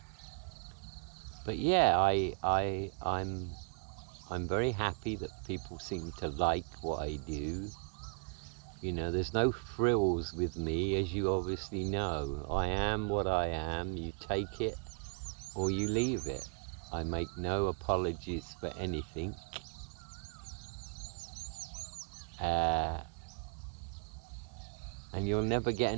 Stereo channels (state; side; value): quieter; left; 36.7 dB